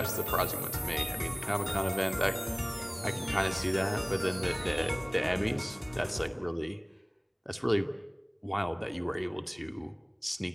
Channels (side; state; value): both; identical; correlation 1.00